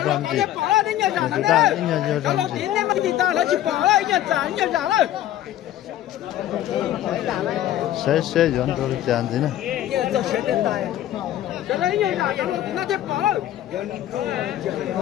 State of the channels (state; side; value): quieter; right; 12.7 dB